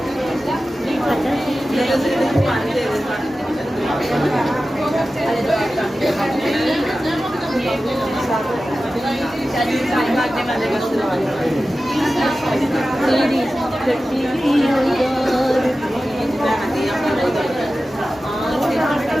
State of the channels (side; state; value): both; normal; correlation 0.94